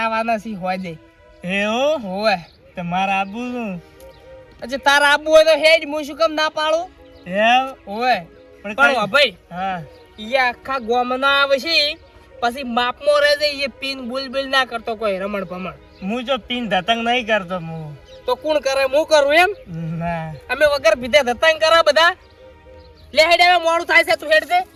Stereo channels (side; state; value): both; identical; correlation 1.00